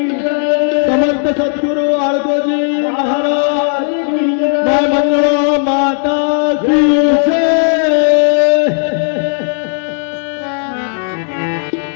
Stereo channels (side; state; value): right; silent; 66 dB below the other